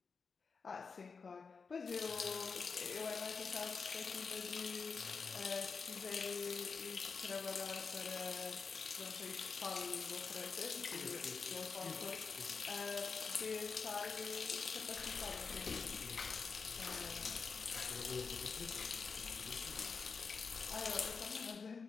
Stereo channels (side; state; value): right; quieter; 5.1 dB